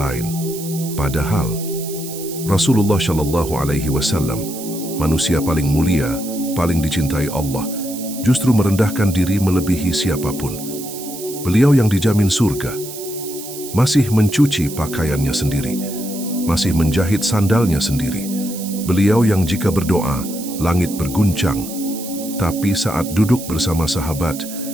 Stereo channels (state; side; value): noise; right; hiss, 11 dB below the sound